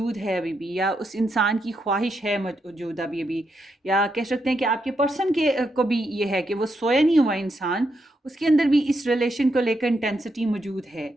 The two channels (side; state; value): both; normal; correlation 0.82